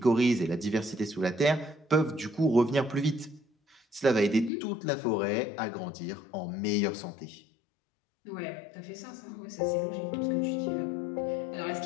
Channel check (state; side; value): drops out; right; at 4.5 s